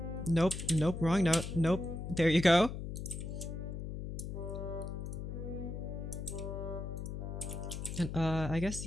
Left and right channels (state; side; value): noise; left; hum, 6 dB below the sound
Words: Nope, nope, wrong note. Nope. There you go. And I guess